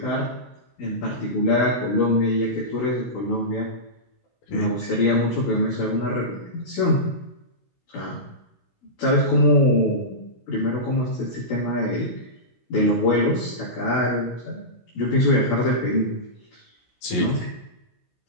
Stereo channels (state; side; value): late; right; 16 ms